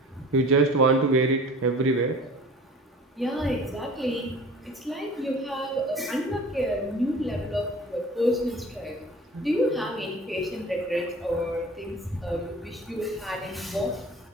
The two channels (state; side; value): normal; both; correlation 0.44